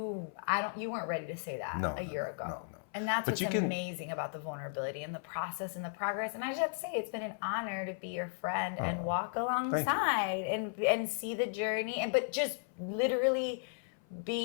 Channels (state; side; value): silent; right; 54 dB below the other